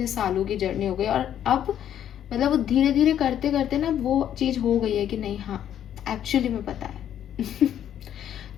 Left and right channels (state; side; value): quieter; right; 10.3 dB